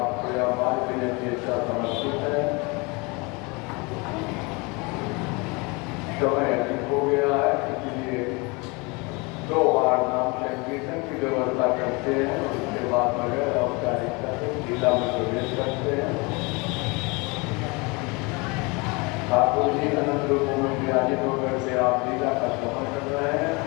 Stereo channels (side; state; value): right; quieter; 27.7 dB